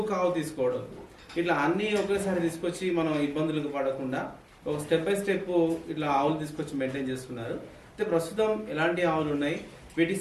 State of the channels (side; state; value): both; identical; correlation 1.00